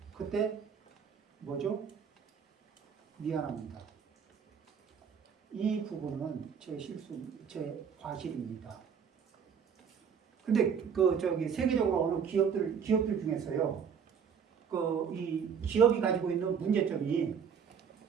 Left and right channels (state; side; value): quieter; left; 7.0 dB